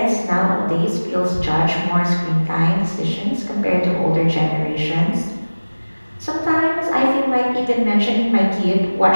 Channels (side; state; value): both; inverted; correlation -1.00